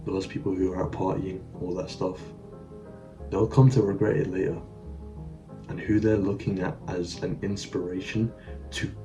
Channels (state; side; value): identical; both; correlation 1.00